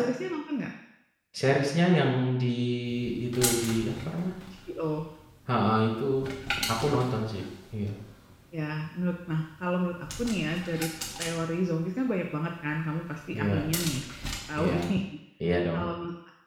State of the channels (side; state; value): both; identical; correlation 1.00